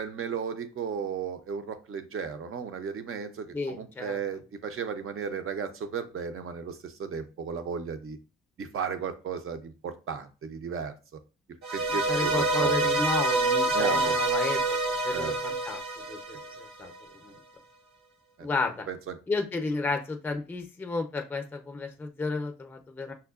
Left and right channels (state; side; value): normal; both; correlation 0.34